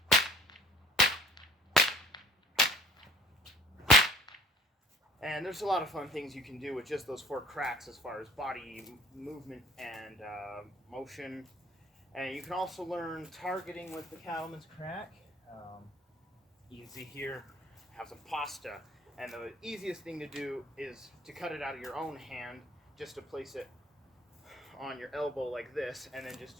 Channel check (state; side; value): normal; both; correlation 0.51